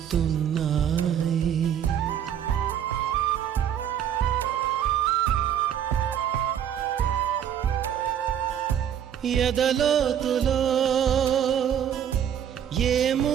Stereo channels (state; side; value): quieter; left; 9.4 dB